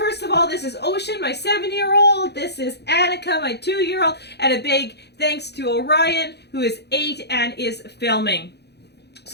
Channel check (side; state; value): right; late; 0.48 ms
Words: of all, this is Ocean, my 7-year-old. This is Annika, my 2-year-old. And a big thanks to Orion, who is 8 and is filming.